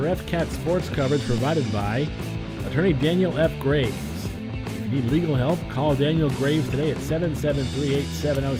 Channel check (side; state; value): both; identical; correlation 1.00